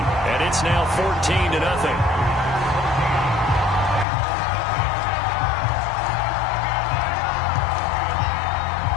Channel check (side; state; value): right; drops out; at 4.0 s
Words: it's now 14-0.